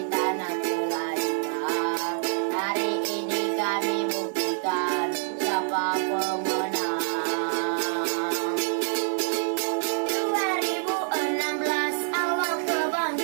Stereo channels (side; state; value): left; silent; digital silence